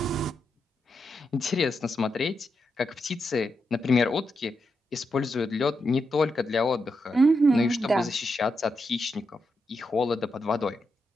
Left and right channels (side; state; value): both; normal; correlation 0.85